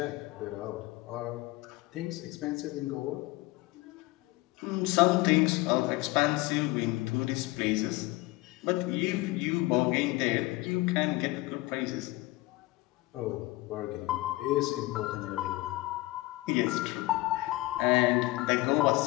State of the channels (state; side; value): quieter; right; 20.3 dB